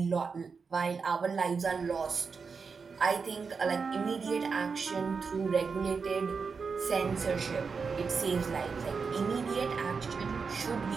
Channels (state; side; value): quieter; left; 5.2 dB